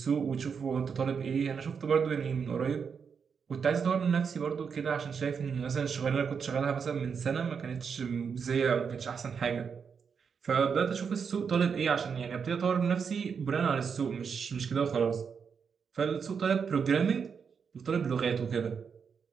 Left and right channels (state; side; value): quieter; left; 6.3 dB